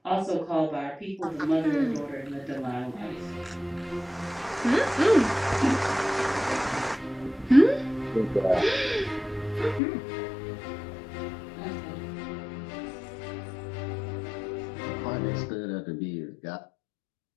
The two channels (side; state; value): right; drops out; at 9.8 s